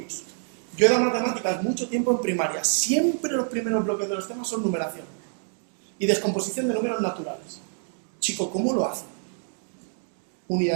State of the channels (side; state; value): left; silent; 60 dB below the other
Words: Yo he dado matemáticas mucho tiempo en primaria. Siempre los primeros bloques de los temas son numeración y descomposición de números naturales. Chico, ¿cómo lo hacen?